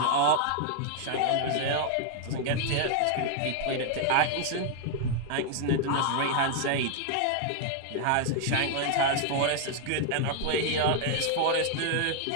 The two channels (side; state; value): both; different; correlation 0.00